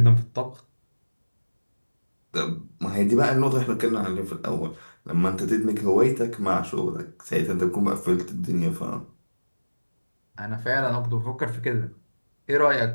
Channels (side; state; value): both; inverted; correlation -1.00